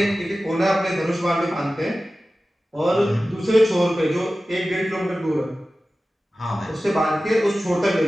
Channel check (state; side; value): normal; both; correlation 0.95